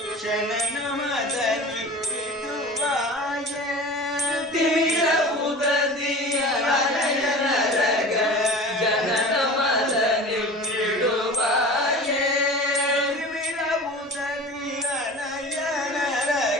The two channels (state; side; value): normal; both; correlation 0.36